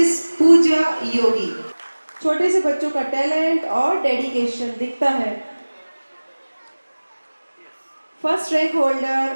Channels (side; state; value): both; inverted; correlation -1.00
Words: Pooja Yogi. छोटे से बच्चों का टैलेंट और डेडिकेशन दिखता है। First rank